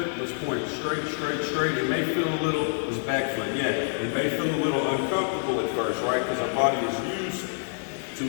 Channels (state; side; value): silent; right; digital silence